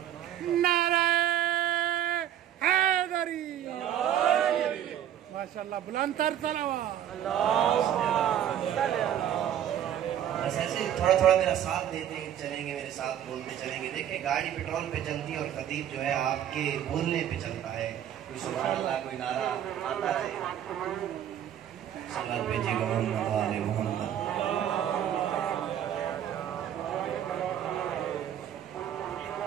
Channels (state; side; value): quieter; left; 10.5 dB